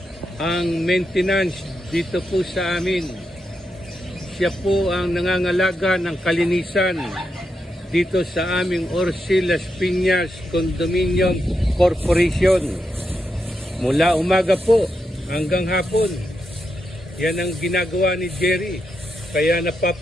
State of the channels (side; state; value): both; normal; correlation 0.84